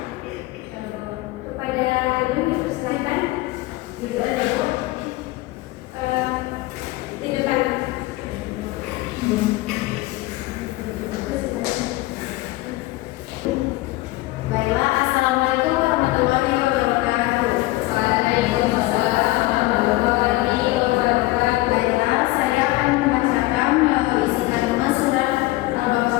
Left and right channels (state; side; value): quieter; right; 19.0 dB